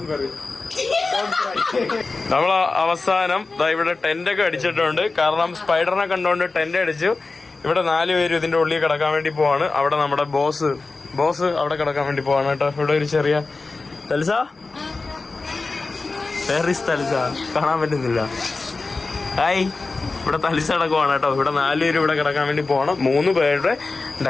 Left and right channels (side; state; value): right; quieter; 3.8 dB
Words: നമ്മൾ അവസാനം ഇവിടെ ടെന്റൊക്കെ അടിച്ചിട്ടുണ്ട്. കാരണം സ്പൈഡറിനെ കണ്ടുകൊണ്ട് ടെന്റ് അടിച്ചു. ഇവിടെ 4 പേര് ഇതിന്റെ ഉള്ളിൽ കിടക്കാൻ വേണ്ടി പോവാണ്. അവിടെ നമ്മുടെ ബോസ് അവിടെ കിടക്കാൻ വേണ്ടി പോവാണ് കേട്ടോ. ഇവിടെ ഒരു ചെറിയ തൽസ കാണാൻ പറ്റുന്നില്ല. ഹായ്. ഇവിടെ തലിസ കിടക്കുവാണ് കേട്ടോ. ഇവിടെ 4 പേര് ഇവിടെ കിടക്കാൻ വേണ്ടി പോകണം. 3 പേരുടെ